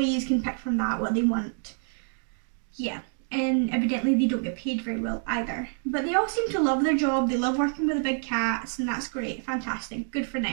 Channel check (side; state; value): left; silent; 60 dB below the other